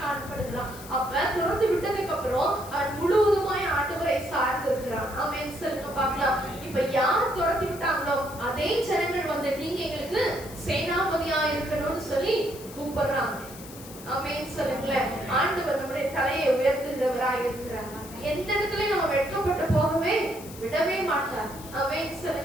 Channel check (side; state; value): left; noise; hiss, 16 dB below the sound